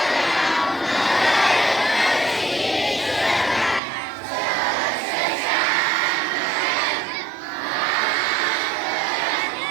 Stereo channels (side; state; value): left; drops out; at 3.8 s